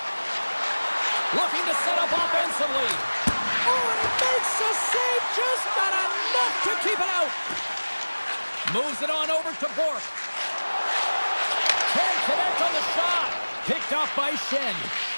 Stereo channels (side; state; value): both; inverted; correlation -1.00